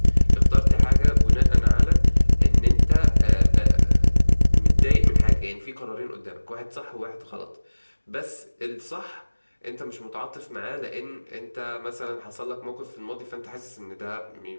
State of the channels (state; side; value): inverted; both; correlation -1.00